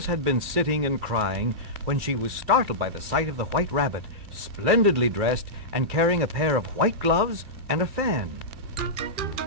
had been sitting and crying when she was startled by the sight of the white rabbit, splendidly dressed and carrying a pair of white gloves and a fan.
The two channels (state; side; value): late; left; 2.5 ms